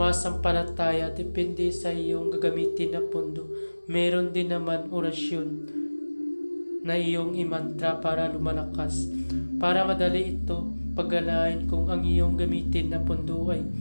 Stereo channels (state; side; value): inverted; both; correlation -1.00